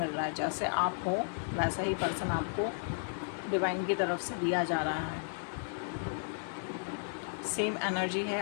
रहा है। जैसे आप हो वैसा ही पर्सन आपको डिवाइन की तरफ से दिया जा रहा है। सेम एनर्जी है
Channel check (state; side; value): silent; right; 55 dB below the other